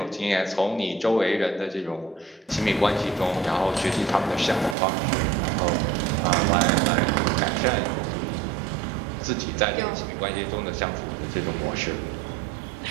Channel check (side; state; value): left; drops out; at 4.8 s